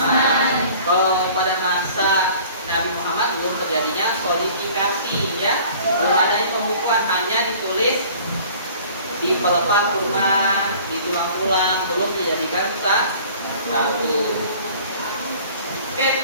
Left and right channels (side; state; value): both; inverted; correlation -0.49